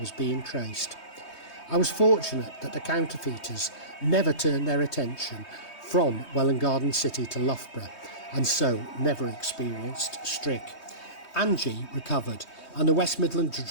being traced. I was fortunate that the counterfeiters never turned their attention from Welwyn Garden City to Loughborough, and so never experienced Strick. Angie recovered, and the West Midland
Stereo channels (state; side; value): late; right; 3.2 ms